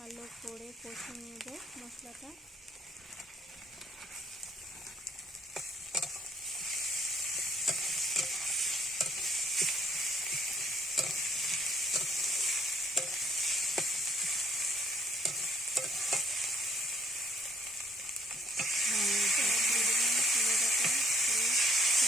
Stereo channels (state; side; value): normal; both; correlation 0.66